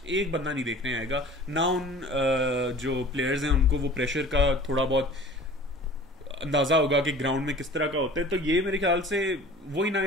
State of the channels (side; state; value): both; normal; correlation 0.44